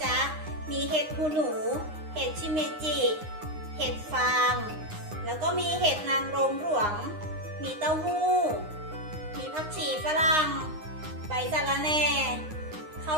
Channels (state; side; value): late; left; 9.7 ms